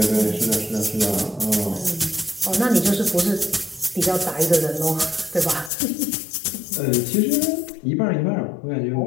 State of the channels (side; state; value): right; drops out; at 5.7 s